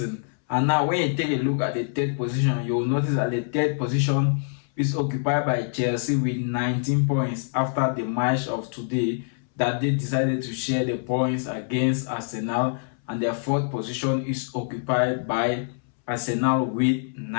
And now when you take a look at the third position, you will notice that the third position is occupied by Chelsea with 19 points after the match of today that they decided to share the points against Arsenal, and their fourth position is occupied by Arsenal with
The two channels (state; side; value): silent; right; 62 dB below the other